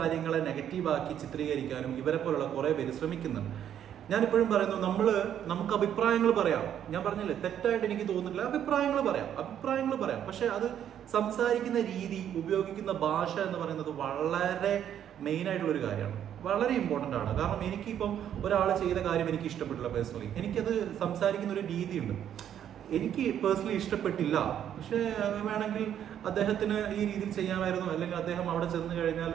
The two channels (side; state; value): left; quieter; 9.9 dB